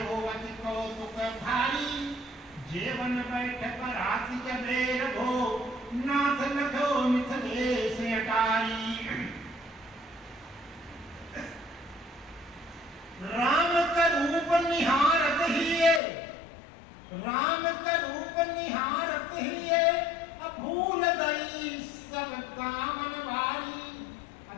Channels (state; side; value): drops out; right; at 16.0 s